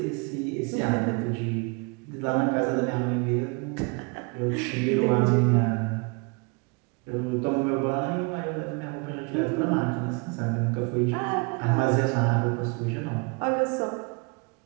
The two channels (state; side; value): quieter; left; 31.3 dB